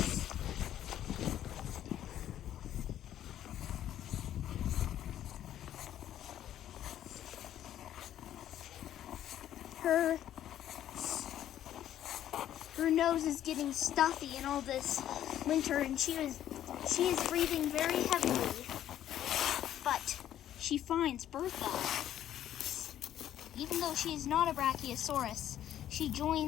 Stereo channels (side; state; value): right; quieter; 11.5 dB